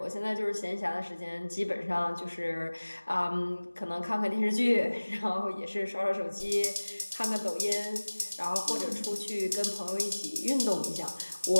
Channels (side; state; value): both; inverted; correlation -1.00